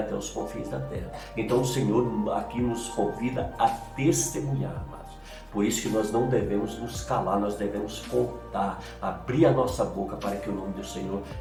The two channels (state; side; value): identical; both; correlation 1.00